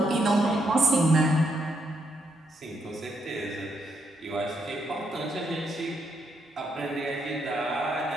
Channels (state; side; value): normal; both; correlation 0.77